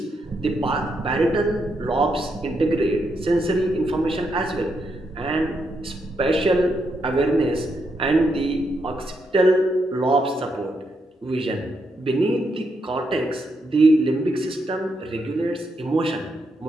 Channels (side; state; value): both; normal; correlation 0.80